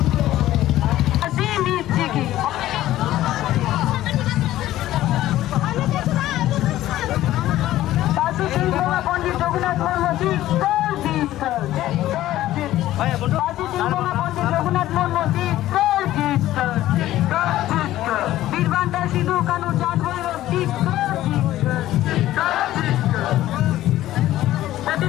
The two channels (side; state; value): right; quieter; 14.4 dB